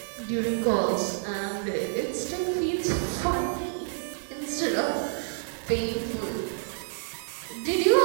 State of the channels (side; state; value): left; silent; digital silence